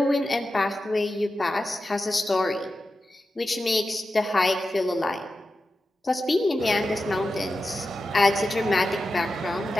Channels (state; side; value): normal; both; correlation 0.92